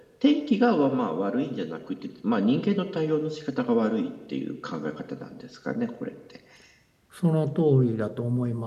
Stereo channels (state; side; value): identical; both; correlation 1.00